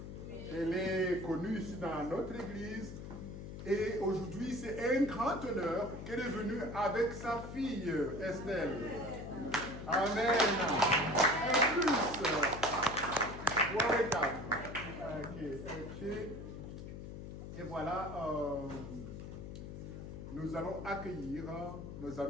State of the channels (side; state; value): left; noise; hum, 9 dB below the sound